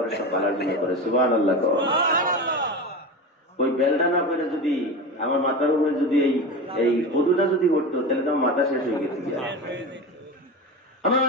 সব ভালোর জন্য করে। সুবহানাল্লাহ। ওই বেলটা না করে যদি আমার মাথার উপরে যদি এই কদুটা যদি উঠতো, তাহলে তো আমার মাথা শেষ হয়ে গেছে।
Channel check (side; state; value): both; normal; correlation 0.25